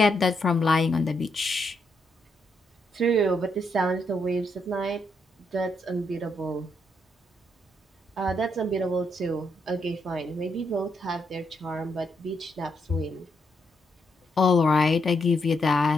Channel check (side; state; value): both; normal; correlation 0.78